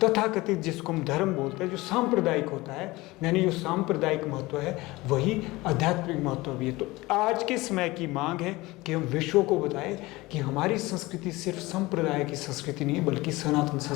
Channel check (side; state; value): right; quieter; 20.7 dB